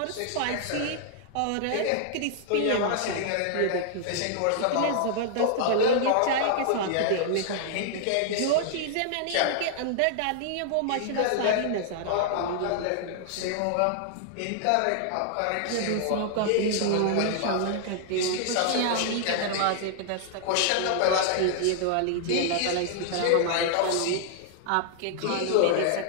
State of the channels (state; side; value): different; both; correlation -0.01